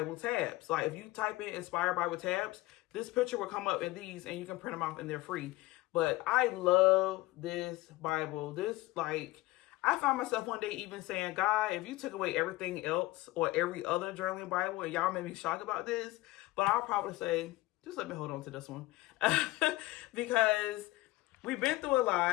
tabs. Like if you type in Inspire Bible tabs, this picture will come up in these, and you can print them off, and they're free. But I love this Bible. I found myself one day even saying, God, if you took away everything else or every other journaling Bible, and y'all made me shocked about this, but I'll probably say, just let me hold on to this one. Because we've been through a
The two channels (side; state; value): right; quieter; 19.4 dB